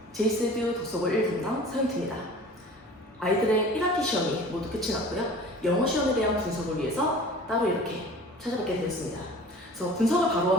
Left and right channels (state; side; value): normal; both; correlation 0.43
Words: 제이스듀 독서고 1분당 서윤트입니다. 아이들의 1학기 시험이 모두 끝이 났고요. 영어 시험에 대한 분석을 위해서 따로 이렇게 찾아뵙게 되었습니다. 그래서 분석을 바로